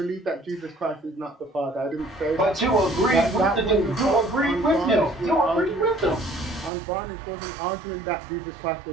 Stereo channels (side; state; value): left; drops out; at 6.7 s